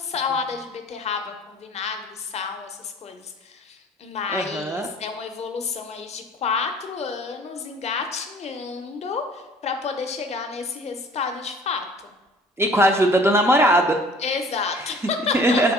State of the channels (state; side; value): normal; both; correlation 0.50